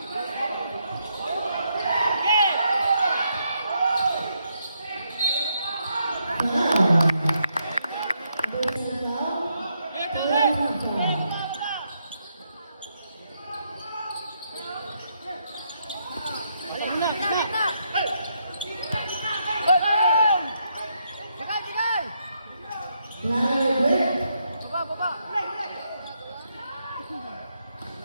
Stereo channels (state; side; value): inverted; both; correlation -0.78